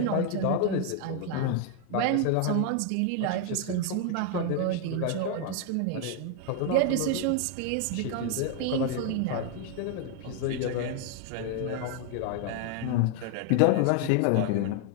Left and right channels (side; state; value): both; different; correlation 0.00